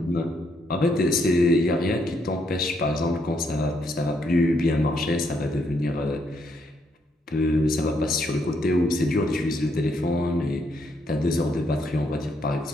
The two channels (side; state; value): both; normal; correlation 0.75